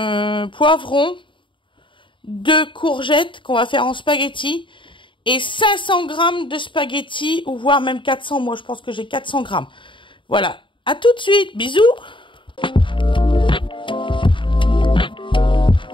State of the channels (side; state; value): right; late; 0.24 ms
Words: poivrons, 2 courgettes qu'on va faire en spaghetti et 500 grammes de spaghetti ou voire même 400. Moi, je pense que j'ai 400 grammes. Voilà. À tout de suite. Bisous.